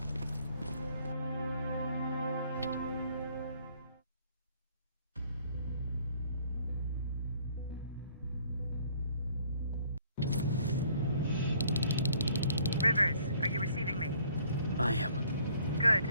Rivers, are you receiving me? I am. Good.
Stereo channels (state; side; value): inverted; both; correlation -0.60